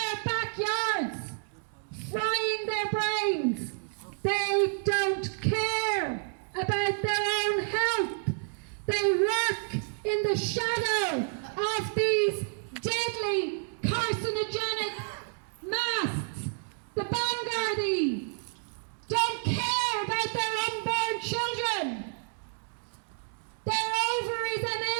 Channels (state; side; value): silent; left; digital silence